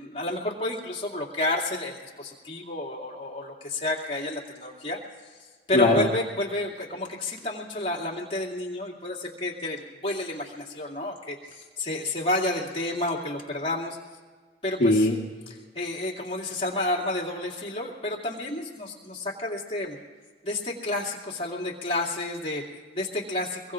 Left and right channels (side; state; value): both; normal; correlation 0.16